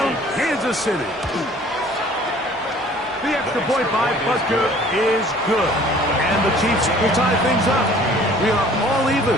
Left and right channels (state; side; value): normal; both; correlation 0.52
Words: Kansas City. The extra point by Butker is good. And the Chiefs will tie things up. We are all even